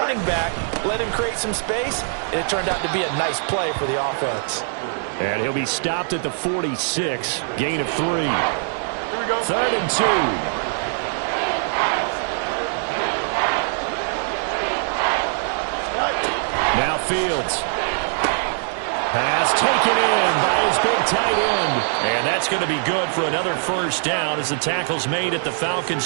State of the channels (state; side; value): silent; left; 64 dB below the other